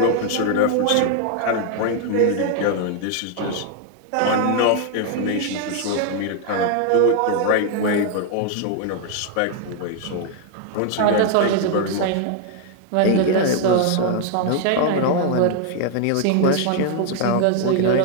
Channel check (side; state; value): both; different; correlation 0.00